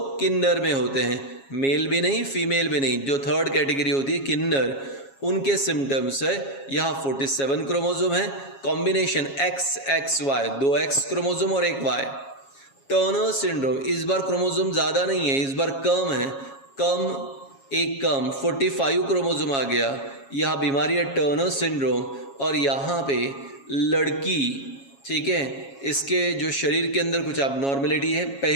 किन्नर में होते हैं, मेल भी नहीं फीमेल भी नहीं, जो थर्ड कैटेगरी होती है किन्नर, उनके सिम्टम्स है। यहाँ 47 क्रोमोसोम है, कॉम्बिनेशन XXY, 2 X क्रोमोसोम और 1 Y। टर्नर सिंड्रोम, इस बार क्रोमोसोम ज़्यादा नहीं है, इस बार कम है, कम 45 क्रोमोसोम आ गया। यह बीमारी है टर्नर सिंड्रोम। और यहाँ पे लड़की, ठीक है, इसके जो शरीर के अंदर कुछ अबनॉर्मलिटी है।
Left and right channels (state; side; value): late; right; 7.3 ms